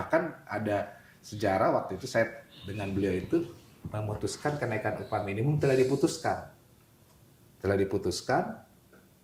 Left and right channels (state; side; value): identical; both; correlation 1.00